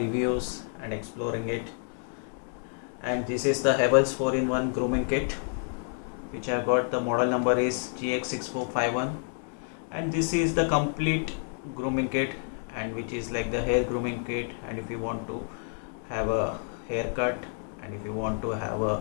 and exploring it. And this is the Havells 4-in-1 grooming kit, which I got. The model number is GX6451. And this is the complete grooming kit, and which is like the hair grooming kit. And if you want to have a haircut, and if you want to have a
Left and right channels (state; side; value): silent; right; 57 dB below the other